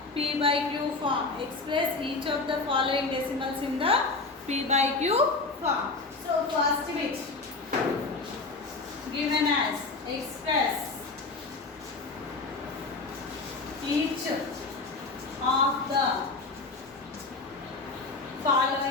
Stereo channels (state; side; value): quieter; right; 3.7 dB